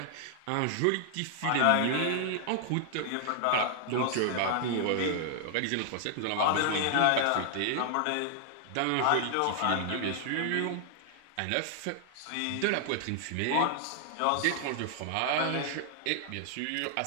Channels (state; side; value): different; both; correlation 0.00